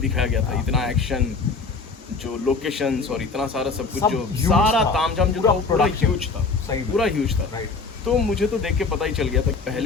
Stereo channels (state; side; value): quieter; right; 4.4 dB